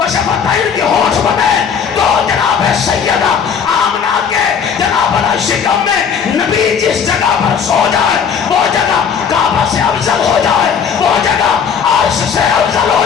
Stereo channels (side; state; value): right; quieter; 6.9 dB